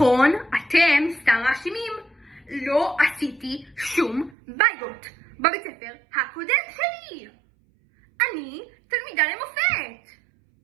אתם סתם מאשימים. לא עשיתי שום בעיות בבית ספר הקודם שלי. אני תלמידה למופת.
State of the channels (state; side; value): drops out; left; at 4.4 s